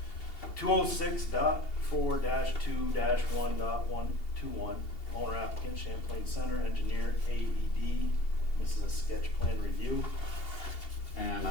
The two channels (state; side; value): late; right; 2.8 ms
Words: 206.4-2-1.121. Owner applicant Champlain Center, engineer AED. This is a sketch plan review. And